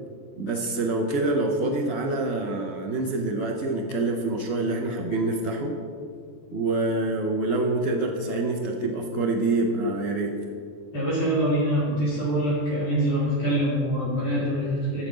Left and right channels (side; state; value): right; late; 21 ms